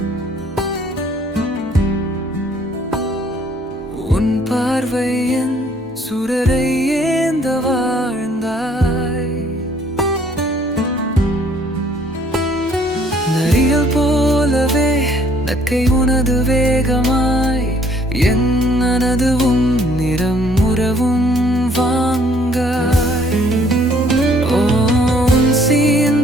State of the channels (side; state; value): both; normal; correlation 0.61